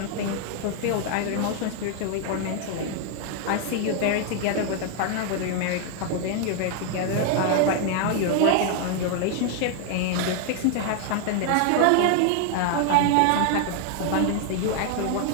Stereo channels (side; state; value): both; different; correlation 0.00